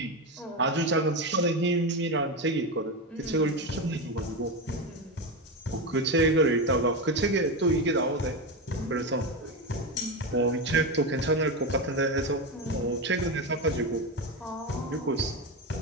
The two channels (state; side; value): normal; both; correlation 0.15